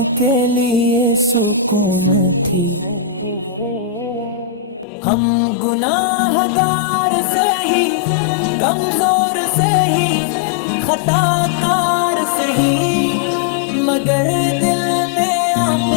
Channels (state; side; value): drops out; right; at 4.9 s